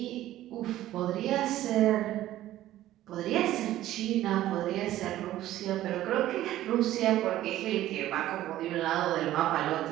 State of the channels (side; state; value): left; quieter; 14.1 dB